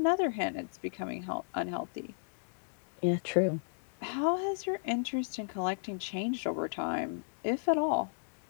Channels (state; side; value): silent; right; digital silence